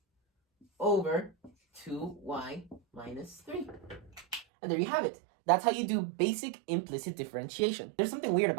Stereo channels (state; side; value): drops out; left; at 4.5 s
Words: over 2y minus 3. And there you have it. That's how you do basic implicit differentiation. There's something weird